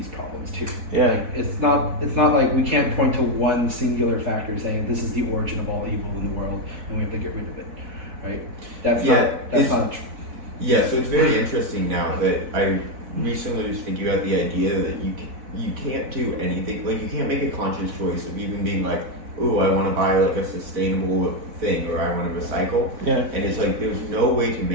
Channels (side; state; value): left; late; 4.3 ms